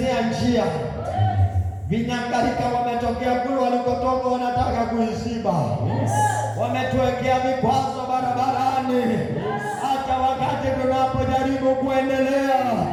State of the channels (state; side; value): identical; both; correlation 1.00